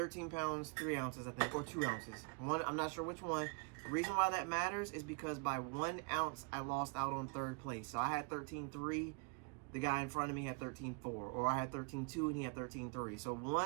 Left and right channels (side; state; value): left; quieter; 37.4 dB